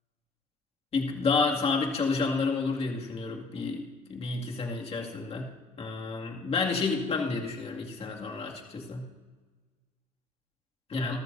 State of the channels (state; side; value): quieter; right; 3.8 dB